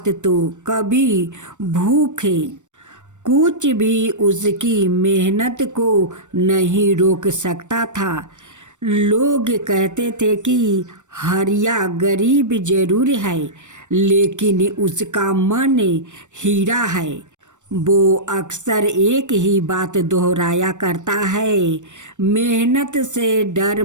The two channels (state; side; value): late; left; 0.85 ms